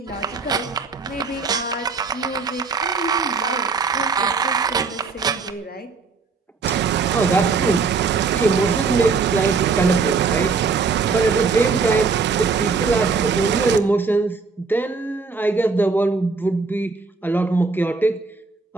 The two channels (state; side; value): quieter; left; 4.6 dB